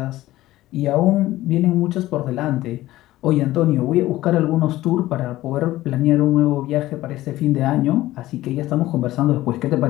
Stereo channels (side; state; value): right; quieter; 16.2 dB